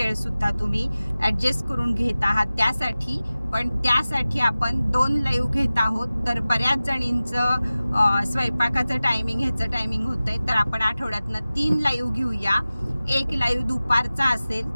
सुद्धा तुम्ही ॲडजस्ट करून घेत आहात त्यासाठी. पण त्यासाठी आपण 2 लाईव्ह घेत आहोत. तर बऱ्याच जणींचं स्वयंपाकाचं टायमिंग ह्याचं टायमिंग होतंय, तर आपण आठवड्यातनं 3 लाईव्ह घेऊया. एक लाईव्ह दुपारचा असेल,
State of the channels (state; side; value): inverted; both; correlation -0.97